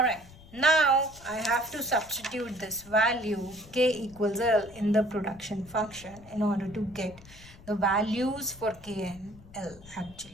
now I have to substitute this value K equals L in the production function in order to get the values for K and L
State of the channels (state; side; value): noise; left; rumble, 21 dB below the sound